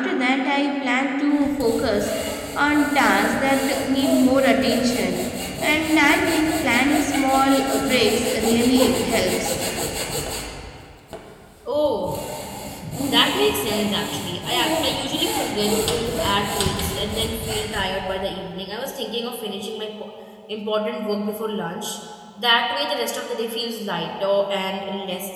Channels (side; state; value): both; identical; correlation 1.00